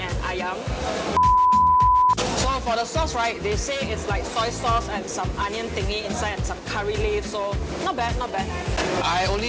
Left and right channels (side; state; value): both; identical; correlation 1.00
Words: ayam. So for the sauce, right, they say it's like soy sauce and some onion thingy inside and some curry leaf. So not bad, not bad. I only